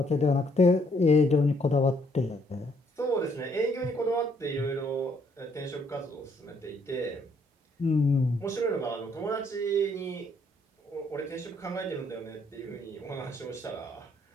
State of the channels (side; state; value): both; normal; correlation 0.69